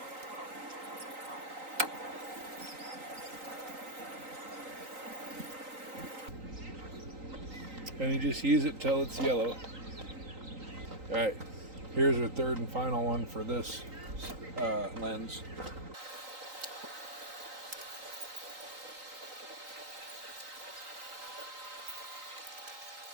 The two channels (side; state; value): left; late; 3.9 ms